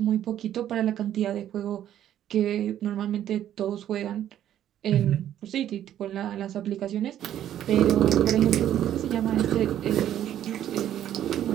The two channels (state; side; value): quieter; left; 11.2 dB